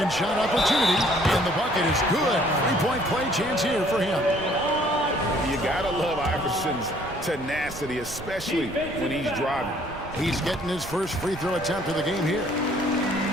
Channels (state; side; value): noise; right; rumble, 14 dB below the sound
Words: shot opportunity, and the bucket is good. Three-point play chance here for him. You gotta love Iverson's tenacity, especially when he's driving. He's getting his first free throw attempt of the game here.